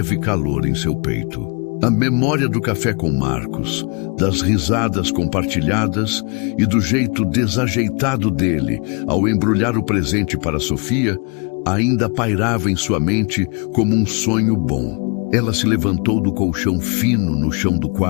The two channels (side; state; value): right; quieter; 34.4 dB